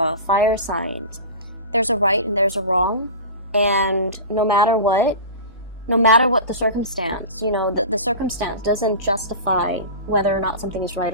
fire signs, there's a right and there's a wrong, and no matter what the circumstance, you know, the circumstance doesn't justify whether or not something is right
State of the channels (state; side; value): inverted; both; correlation -0.31